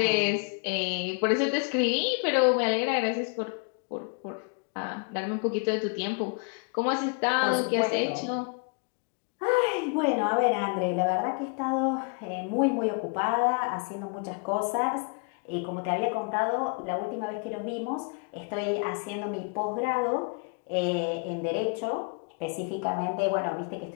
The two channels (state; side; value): quieter; right; 36.5 dB